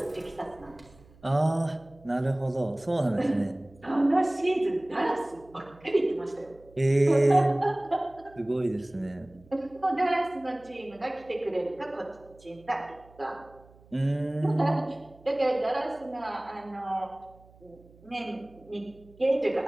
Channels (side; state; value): right; noise; hum, 26 dB below the sound